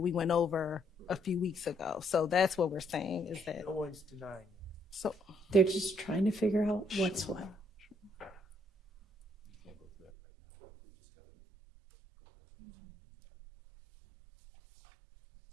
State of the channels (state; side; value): drops out; left; at 10.1 s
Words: went over a few weeks ago. So that's what we're saying is that. no one's denying. So They're just trying to figure out what's what.